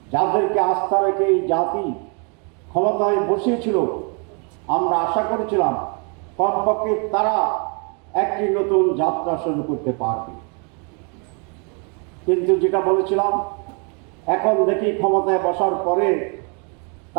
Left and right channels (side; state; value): left; quieter; 36.4 dB